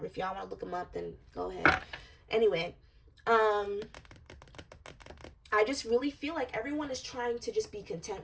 if y'all want to look them up, then go ahead. Anyway, I just really feel like everyone is trying to just be content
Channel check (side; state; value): both; identical; correlation 1.00